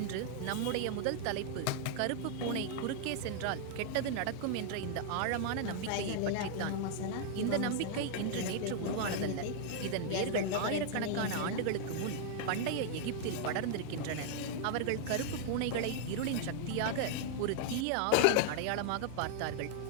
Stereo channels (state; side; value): different; both; correlation -0.01